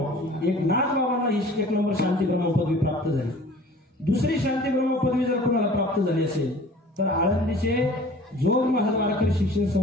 एक नाथ बाबांना ही 1 नंबर शांती ब्रह्म पदवी प्राप्त झाली. दुसरी शांती ब्रह्म पदवी जर कोणाला प्राप्त झाली असेल तर आळंदीचे जोग महाराज वारकरी शिक्षण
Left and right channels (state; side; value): normal; both; correlation 0.47